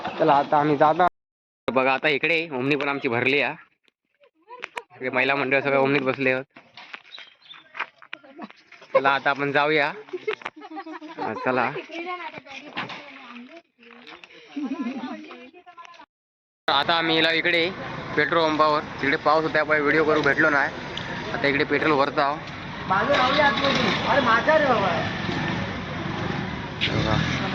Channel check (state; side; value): identical; both; correlation 1.00